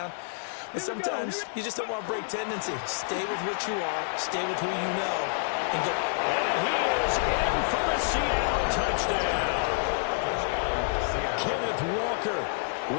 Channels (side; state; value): right; silent; digital silence